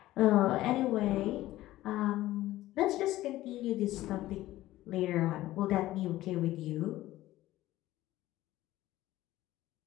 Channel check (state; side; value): quieter; right; 15.8 dB